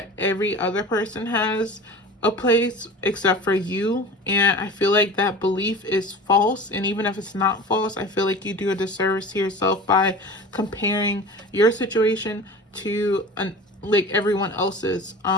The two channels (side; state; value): both; normal; correlation 0.36